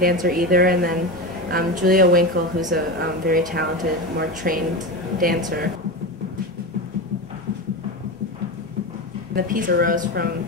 dancer either. And then Julia Winkle, who's a very talented, more trained dancer. The piece arose from,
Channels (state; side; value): normal; both; correlation 0.21